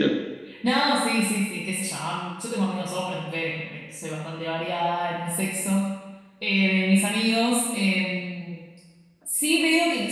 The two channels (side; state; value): both; identical; correlation 1.00